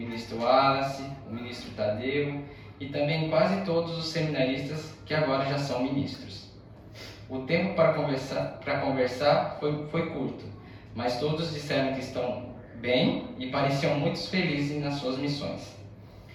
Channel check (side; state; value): both; identical; correlation 1.00